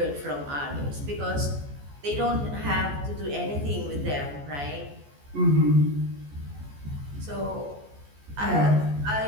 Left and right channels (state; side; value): late; left; 14 ms